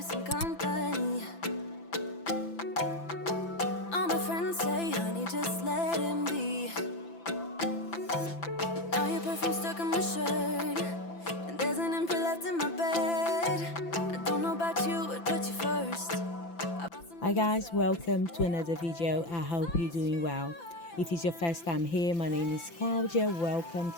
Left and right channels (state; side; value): late; right; 5.9 ms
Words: some company. All my friends say, honey, just let him be. Now your perfume stuck on my shirt, and there's an empty left in my bed. I don't know about you, but put you first. Hi guys, welcome to another video. I hope you're doing well. If it's your first time here, my name is Claudia. Welcome